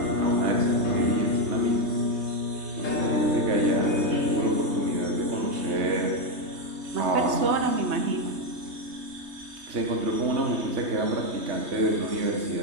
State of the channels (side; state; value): left; late; 3.2 ms